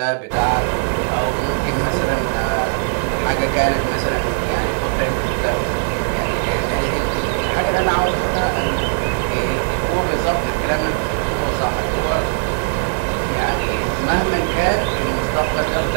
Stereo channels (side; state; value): left; silent; digital silence